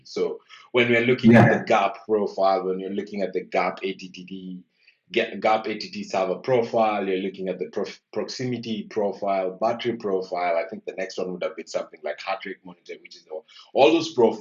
So when we're looking at the Yeah. GAP profile, when you're looking at the GAP ATT server profile, you're looking at the proximity profile, battery profile. I think the next one would have been something like heart rate monitor, which is all those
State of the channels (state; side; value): identical; both; correlation 1.00